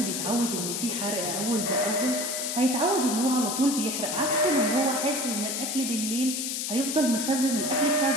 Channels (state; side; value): noise; left; hiss, 2 dB below the sound